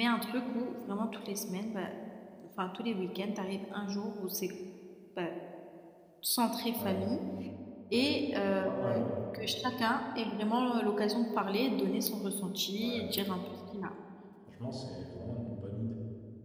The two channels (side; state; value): both; identical; correlation 1.00